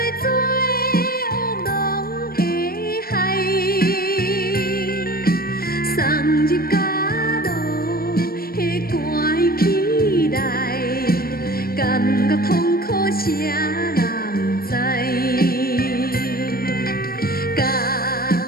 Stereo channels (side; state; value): right; late; 0.44 ms